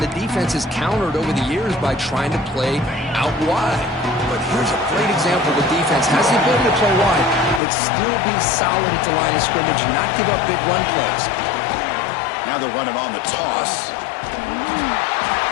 the defense is countered over the years by trying to play out wide. But here's a great example. The defense has the ability to play wide, but still be solid at the line of scrimmage and not give up big run plays. Now they're running on the toss.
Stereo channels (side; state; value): right; drops out; at 7.6 s